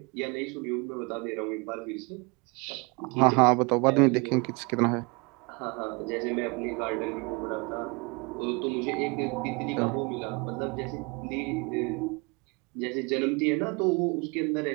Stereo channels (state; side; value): quieter; left; 29.2 dB